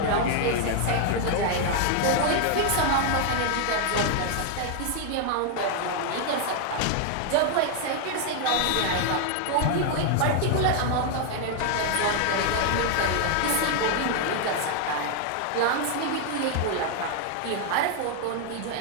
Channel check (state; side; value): different; both; correlation 0.00